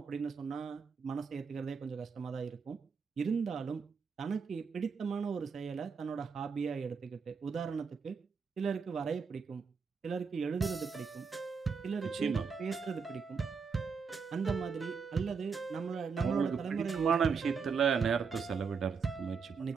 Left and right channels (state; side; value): quieter; left; 5.5 dB